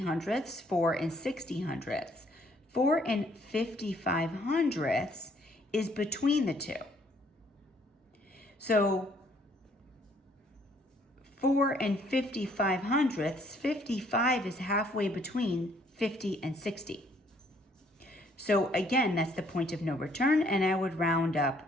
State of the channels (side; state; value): both; normal; correlation 0.64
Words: 4 and 60/100. 4 and 55/100 is between the two. So 4 and 55/100, 55 is halfway between 50 and 60. So again, that's the point of no return, and I would round